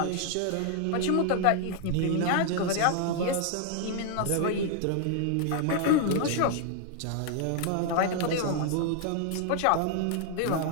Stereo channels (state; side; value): different; both; correlation 0.00